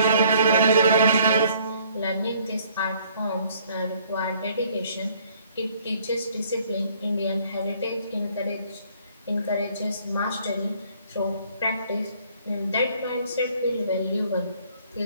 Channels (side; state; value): both; inverted; correlation -0.60